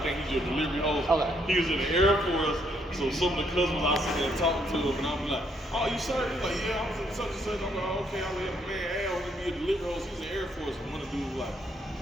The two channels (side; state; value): both; normal; correlation 0.71